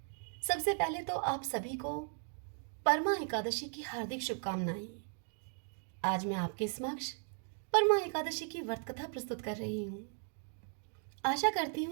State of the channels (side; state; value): left; silent; 53 dB below the other